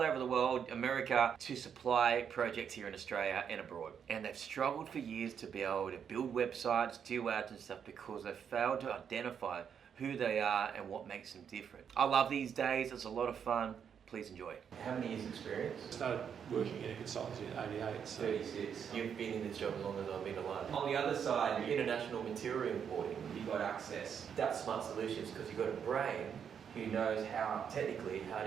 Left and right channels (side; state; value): left; quieter; 7.7 dB